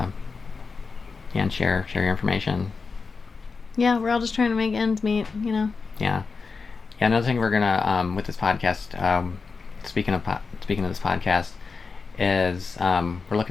share your information. Yeah, we're all just trying to make ends meet, you know. Yeah. Another thing we're gonna with this podcast, speaking of this podcast, is we're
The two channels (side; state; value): right; quieter; 4.7 dB